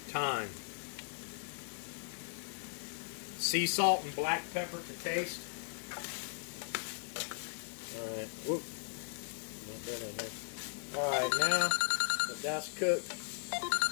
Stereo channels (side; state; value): right; silent; 53 dB below the other